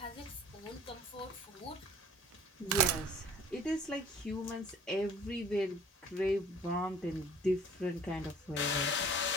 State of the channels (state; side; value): normal; both; correlation 0.50